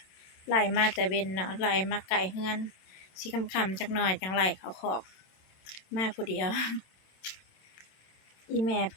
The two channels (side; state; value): right; late; 27 ms